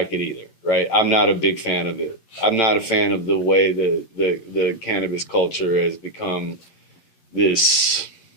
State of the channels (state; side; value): late; right; 11 ms